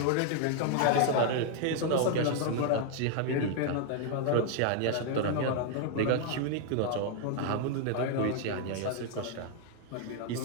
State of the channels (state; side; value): different; both; correlation 0.00